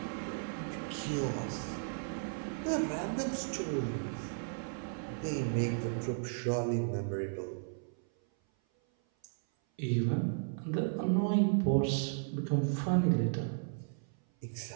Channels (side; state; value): left; silent; 55 dB below the other